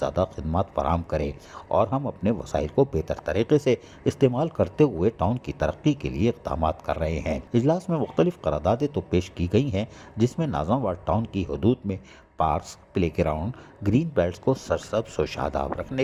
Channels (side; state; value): both; identical; correlation 1.00